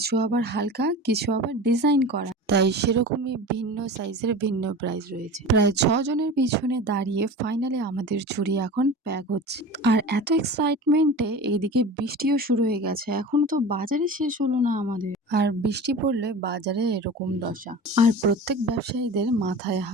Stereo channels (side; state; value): both; normal; correlation 0.34